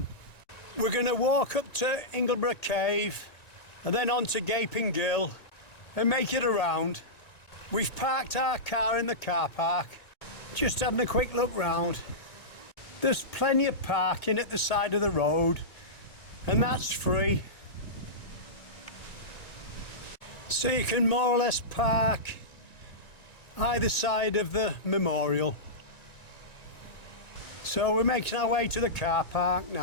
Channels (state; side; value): late; right; 1.9 ms